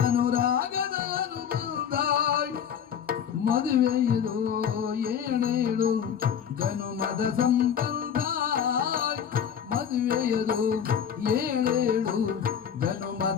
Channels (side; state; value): right; quieter; 8.3 dB